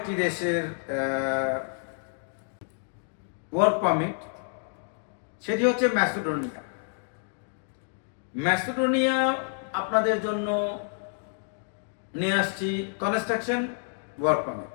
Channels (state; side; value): silent; right; 59 dB below the other